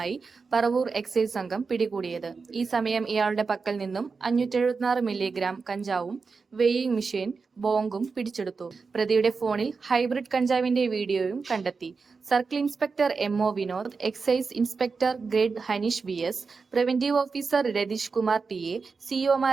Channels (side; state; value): left; quieter; 4.8 dB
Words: പറവൂർ എക്സൈസ് സംഘം പിടികൂടിയത്. ഈ സമയം ഇയാളുടെ പക്കൽ നിന്നും 576 മില്ലിഗ്രാം കഞ്ചാവും വെയിങ് മെഷീൻ, ബോംബും പിടിച്ചെടുത്തു. പ്രതിയുടെ ഫോണിൽ ഹൈബ്രിഡ് കഞ്ചാവിന്റെ വീഡിയോയും കണ്ടെത്തി. Circle inspector MO Vinod, excise inspector grade Hanish VS, preventive officer Ratheesh Kumar TA,